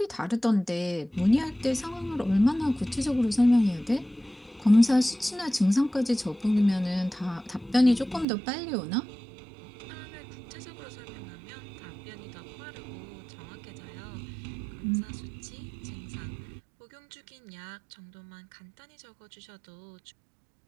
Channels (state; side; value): drops out; left; at 8.2 s